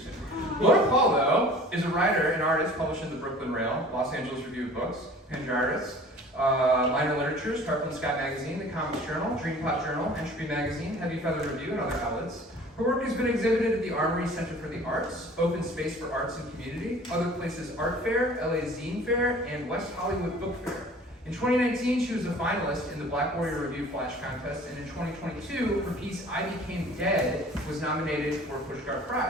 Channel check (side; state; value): both; normal; correlation 0.47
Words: Laura Paul, though, is a writer and artist published in the Brooklyn Rail, Los Angeles Review of Books, Panjaris, Minor Literatures, Tarpon Sky Magazine, The Comics Journal, Dreampot Journal, Entropy Magazine, Heavy Feather Review, and other outlets. Her work has been exhibited at the Armory Center for the Arts, Open Space for Arts and Community, Other Places Art Fair, LA Zine Fair, and West Hollywood Book Fair. In 2019, she was a finalist in the Black Warrior Review Flash Contest, and in 2022, her piece I Became Dead was nominated for a Pushcart